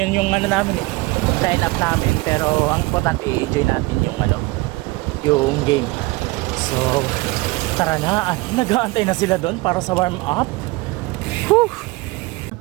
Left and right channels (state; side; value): quieter; left; 22.7 dB